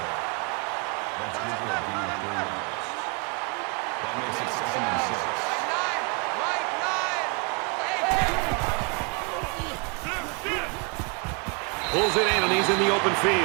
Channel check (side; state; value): left; quieter; 33.6 dB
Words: That's good for a gain of 4 yards. That makes it 2nd and 6. Pulls it in, and he's in the open